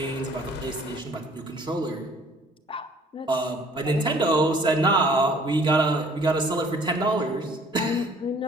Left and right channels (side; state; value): both; normal; correlation 0.56